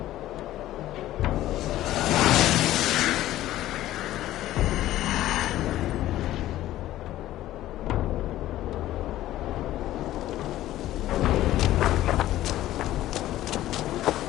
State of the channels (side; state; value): right; quieter; 14.4 dB